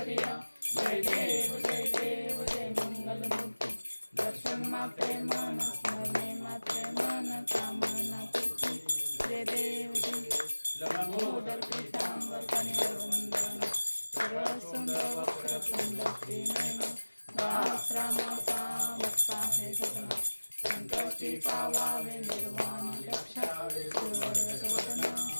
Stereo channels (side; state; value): both; inverted; correlation -1.00